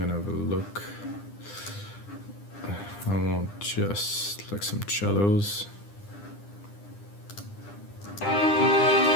to have a look. I want just like some cellos.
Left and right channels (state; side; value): late; right; 9.9 ms